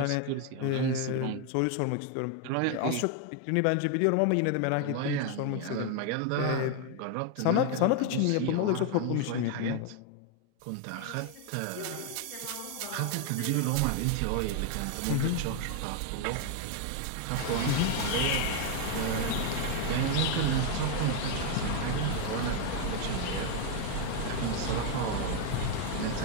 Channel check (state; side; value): different; both; correlation 0.01